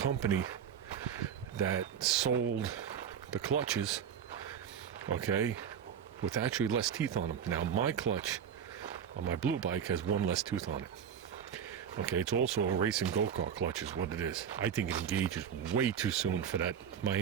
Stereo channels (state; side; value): quieter; left; 8.2 dB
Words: that sold the clutches, okay, with actually less teeth on them. Now my clutch on my blue bike has one less tooth on it. Okay, it's also a racing go-kart clutch is what it is. I think it engages way too soon for that, my